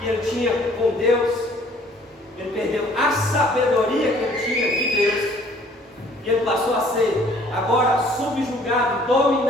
ele tinha com Deus, ele perdeu a sabedoria que ele tinha de Deus, e ele passou a ser agora subjugado,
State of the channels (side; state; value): both; normal; correlation 0.57